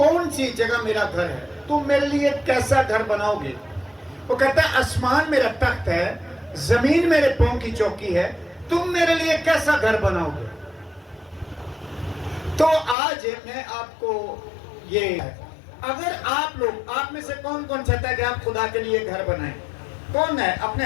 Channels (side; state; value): right; drops out; at 13.0 s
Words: سی جگہ میرا گھر ہے، تم میرے لیے کیسا گھر بناؤ گے۔ وہ کہتا ہے آسمان میرا تخت ہے، زمین میرے پاؤں کی چوکی ہے، تم میرے لیے کیسا گھر بناؤ گے۔ تو آج میں آپ کو یہ اگر آپ میں سے کون چاہتا ہے کہ آپ خدا کے لیے گھر بنائیں؟ کون ہے؟ اپنے